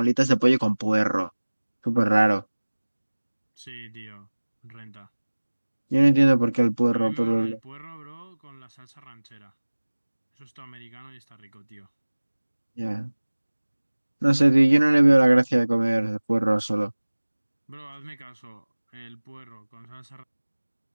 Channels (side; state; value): both; inverted; correlation -1.00